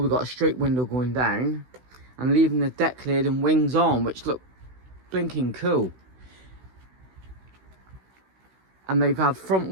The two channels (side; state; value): left; late; 16 ms